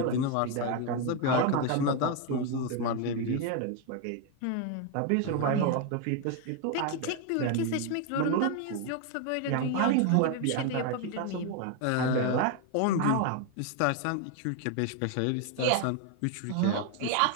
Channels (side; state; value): both; different; correlation 0.01